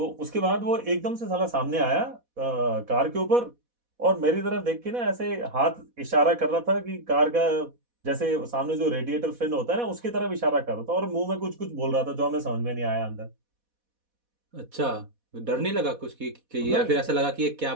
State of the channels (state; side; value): late; left; 4.1 ms